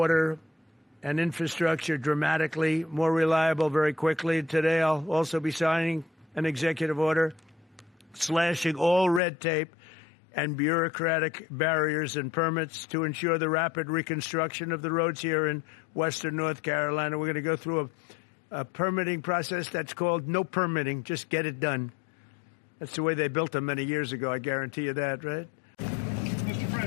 and infrastructure dramatically more reliable very quickly. Today, I'll also be signing an executive order slashing all red tape and bureaucratic barriers and permits to ensure the rapid reconstruction of the roads here in western North Carolina. We're going to go through a permitting process that's called no permitting, just get it done. That's the way they built them many years ago, I guarantee you that, right? Mr.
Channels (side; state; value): right; drops out; at 9.2 s